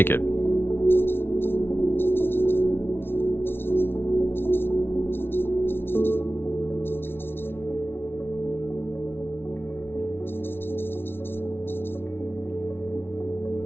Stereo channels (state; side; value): late; right; 0.11 ms